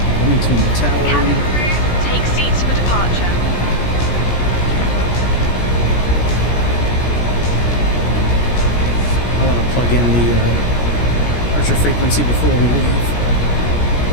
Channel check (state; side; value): late; right; 17 ms